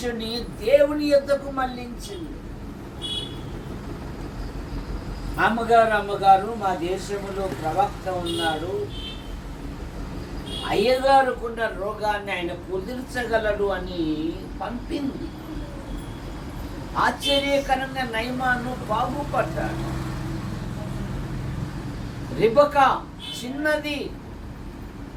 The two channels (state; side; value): identical; both; correlation 1.00